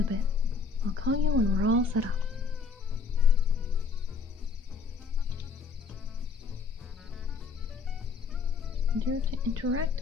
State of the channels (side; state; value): right; quieter; 5.0 dB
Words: a bit? I'll call you when we're all set up. Dare to interact